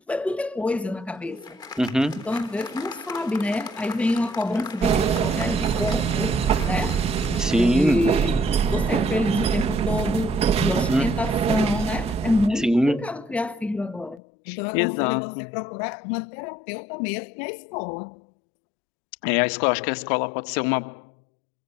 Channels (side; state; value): right; drops out; at 14.2 s